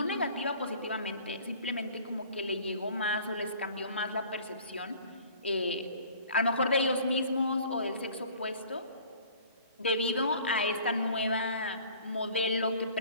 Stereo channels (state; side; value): inverted; both; correlation -0.50